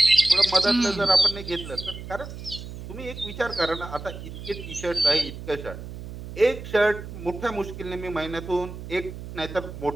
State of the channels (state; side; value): noise; right; hum, 11 dB below the sound